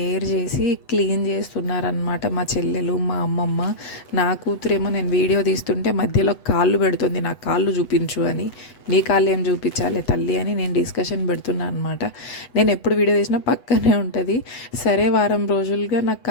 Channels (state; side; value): late; right; 8.1 ms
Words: చేసి క్లీన్ చేస్తున్నారనమాట మా చెల్లెలు, మా అమ్మమ్మ. నా కూతురేమో నేను వీడియో తీస్తుంటే మధ్యలో కాళ్ళు పెడుతుంది, నా కాళ్ళు చూపించు అని. నీ కాళ్ళు ఏం చూపించాలి తల్లి అని నేను డిస్కషన్ పెడుతున్నాను అనమాట. నేను ఎప్పుడు వీడియో తీసినా పక్కనే ఉంటుంది. సరే, వారం రోజులుగా నాకు